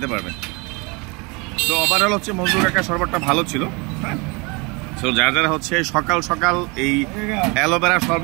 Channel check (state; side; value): quieter; left; 28.5 dB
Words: পারবেন। তো ওভারঅল হচ্ছে মজনু কাকার শরবতটা ভালো ছিল। হ্যাঁ, তো যারা হচ্ছে সকাল সকাল এই অ্যালোভেরা